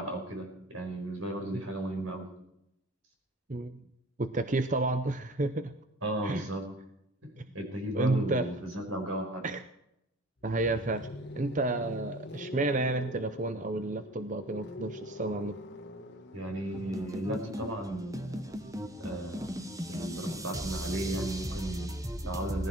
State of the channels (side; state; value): both; normal; correlation 0.46